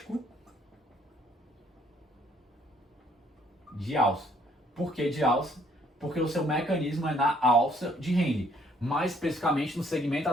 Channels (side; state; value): both; normal; correlation 0.65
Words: de alça. Por que de alça? Porque o seu mecanismo é na alça de Henle, mais especificamente no segmento